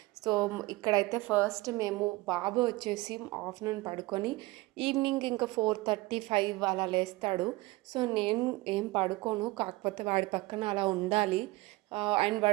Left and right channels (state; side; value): quieter; left; 21.1 dB